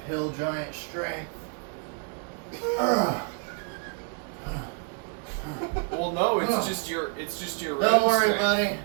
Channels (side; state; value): left; quieter; 39.7 dB